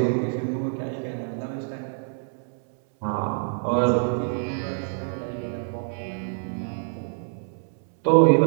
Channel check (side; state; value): left; silent; 61 dB below the other